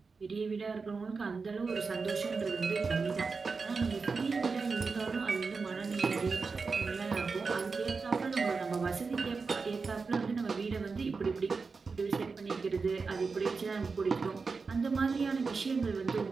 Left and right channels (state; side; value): quieter; left; 4.6 dB